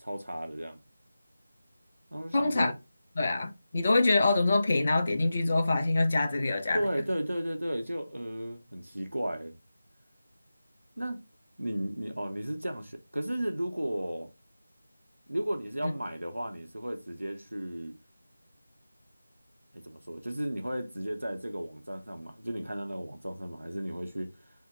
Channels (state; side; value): inverted; both; correlation -0.94